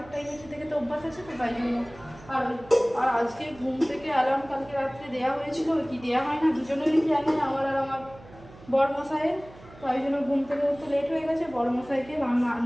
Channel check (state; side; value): noise; right; hum, 21 dB below the sound